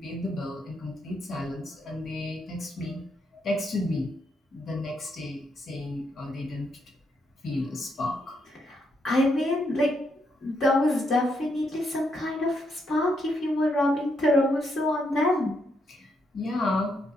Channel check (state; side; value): normal; both; correlation 0.78